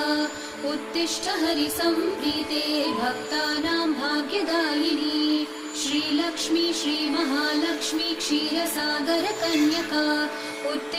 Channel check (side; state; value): both; identical; correlation 1.00